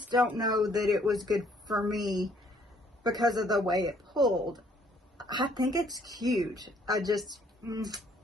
don't know that it was good for me because of the way it pulled. I think it's cute. I just,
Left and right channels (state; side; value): normal; both; correlation 0.64